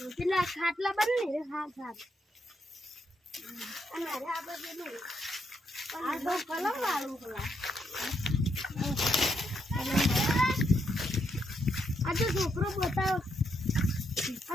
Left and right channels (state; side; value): normal; both; correlation 0.78